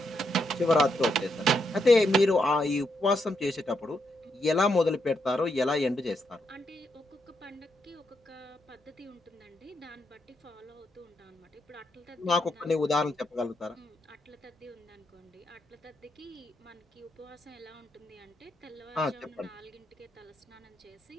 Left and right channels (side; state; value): both; normal; correlation 0.80